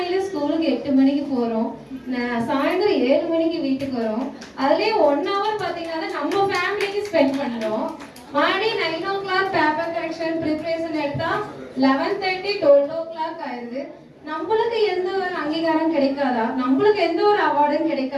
ஸ்கூலுக்கு 8 மணிக்கு போறோம், சாயந்தரம் 7 மணிக்கு வீட்டுக்கு வரோம். அதுலயே 1 hour பாத்தீங்கன்னா நம்ம ஃபேமிலிக்கு ஸ்பெண்ட் பண்றோம். மறுபடியும் 9 o'clock பேப்பர் கரெக்ஷன் ப்ரிப்பரேஷன் எடுத்தா 11:30 12 o'clock ஆயிடுது. நம்மளுக்கு எந்த ஒரு அங்கீகாரம் கிடைக்காதா, நம்மளுக்கு எந்த ஒரு அவார்டும்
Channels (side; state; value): both; identical; correlation 1.00